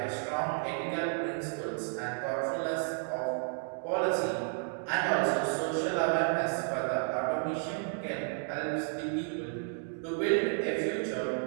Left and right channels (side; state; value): left; silent; 56 dB below the other